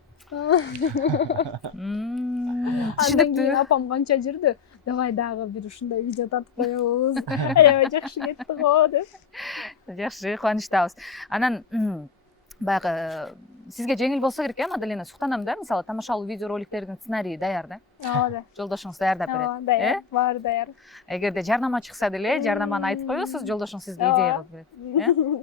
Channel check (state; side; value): quieter; right; 5.9 dB